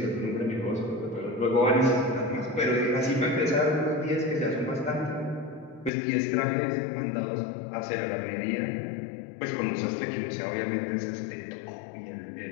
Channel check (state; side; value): drops out; right; at 5.9 s